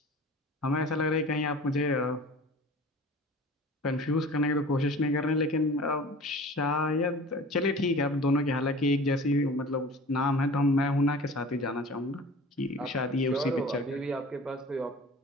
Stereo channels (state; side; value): normal; both; correlation 0.42